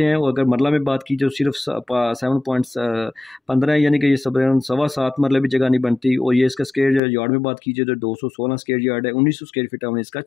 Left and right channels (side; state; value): right; drops out; at 7.0 s